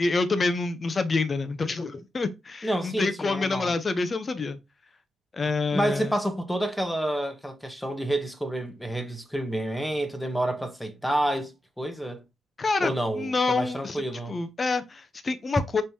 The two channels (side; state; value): both; normal; correlation 0.89